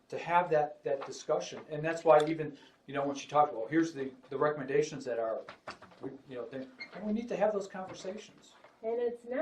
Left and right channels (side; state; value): both; identical; correlation 1.00